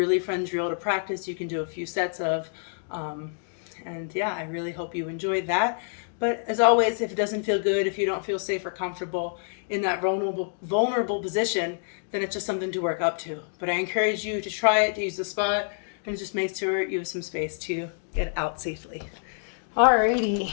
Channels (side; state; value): right; silent; digital silence